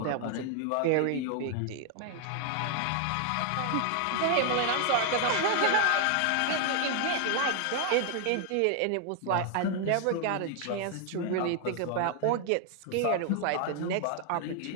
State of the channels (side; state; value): both; different; correlation 0.00